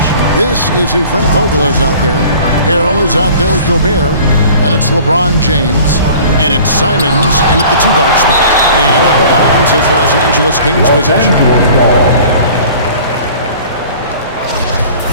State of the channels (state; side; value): inverted; both; correlation -0.46